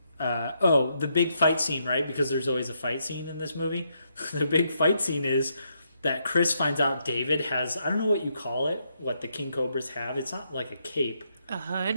the big fight scene, right? Because there's always a fight scene in this movie. The big fight scene is that Chris finds out David has, I don't know what you call it, what the king cobras have. It's not like a cape. A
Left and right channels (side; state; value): both; inverted; correlation -0.78